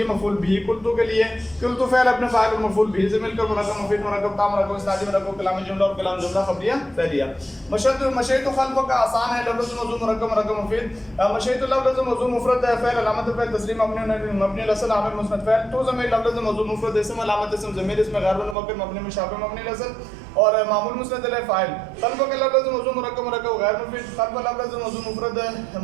مفعول بھی قلتو کے لیے. قلتو فعل اپنے فاعل اور مفعول بھی سے مل کر مرکب مفید مرکب تام مرکب اسنادی مرکب کلام جملہ اور کلام جملہ خبریہ فعلیہ. مشیت خلف کا آسان ہے لفظ موضوع مرکب مرکب مفید. مشیت لفظ موضوع مفرد فعل علامت فعل تسلیم مبنی الاصل عامل مسند فعل. تو ضمیر لفظ موضوع مفرد اسم علامت اسم ضمیر اسم غیر متمکن مبنی مشابہ مبنی الاصل اور معمول مسند علیہ فاعل. خلف کا لفظ موضوع مرکب مرکب غیر مفید. خلف لفظ موضوع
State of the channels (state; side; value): drops out; left; at 18.6 s